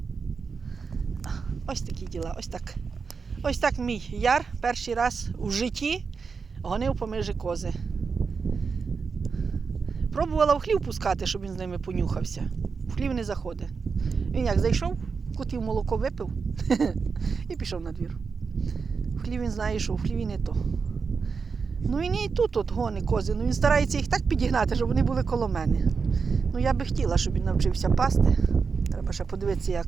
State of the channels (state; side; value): quieter; left; 5.2 dB